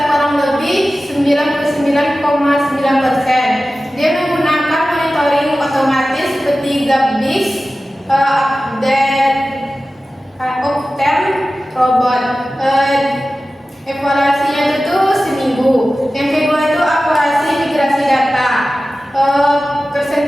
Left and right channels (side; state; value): both; normal; correlation 0.95